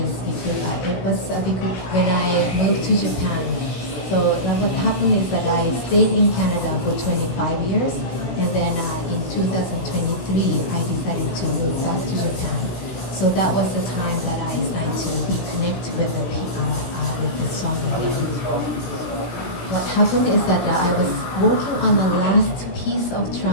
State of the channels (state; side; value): late; right; 17 ms